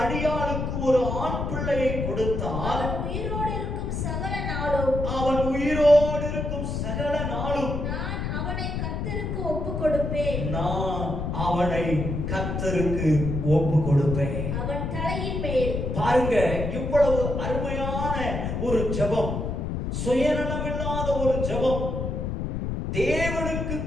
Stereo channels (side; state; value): left; noise; rumble, 3 dB below the sound